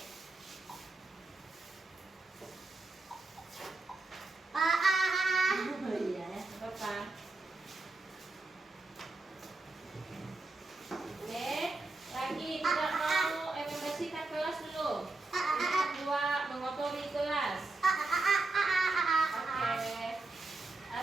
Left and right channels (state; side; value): quieter; left; 3.4 dB